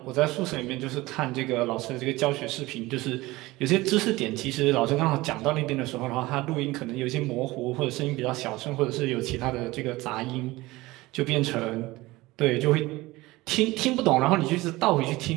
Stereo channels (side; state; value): left; quieter; 19.9 dB